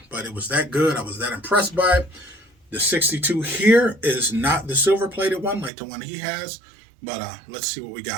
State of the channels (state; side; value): drops out; left; at 5.7 s